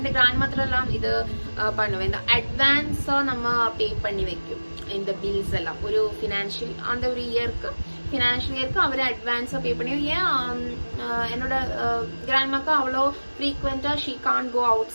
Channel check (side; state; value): both; inverted; correlation -1.00